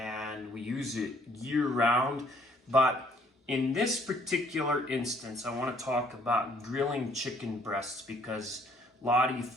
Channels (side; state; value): both; normal; correlation 0.63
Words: we use it year round. But in this particular instance, I want to talk about grilling chicken breasts because a lot of you